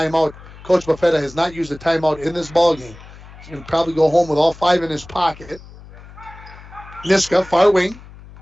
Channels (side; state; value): left; noise; hum, 19 dB below the sound